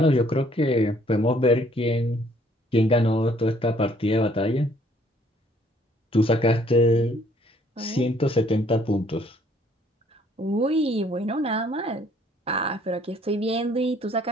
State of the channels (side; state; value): both; normal; correlation 0.62